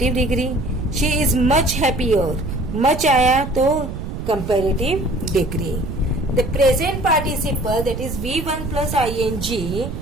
degree. she is much happier, much आया तो comparative degree. The present participle that is V1 plus ing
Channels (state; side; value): noise; right; rumble, 7 dB below the sound